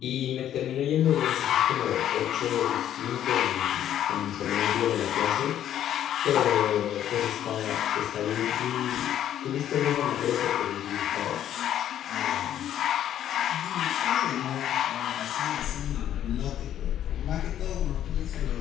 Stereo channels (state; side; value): quieter; right; 10.9 dB